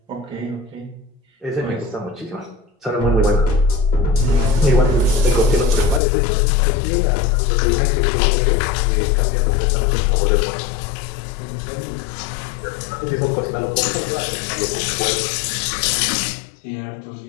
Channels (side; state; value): right; drops out; at 6.0 s